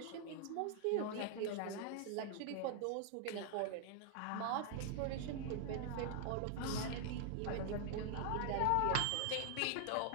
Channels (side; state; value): both; different; correlation 0.00